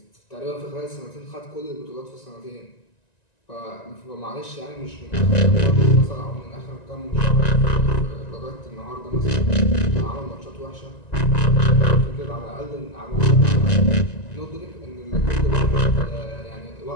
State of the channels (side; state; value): right; late; 1.9 ms